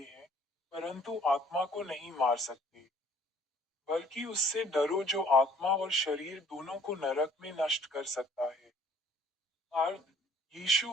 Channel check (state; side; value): normal; both; correlation 0.58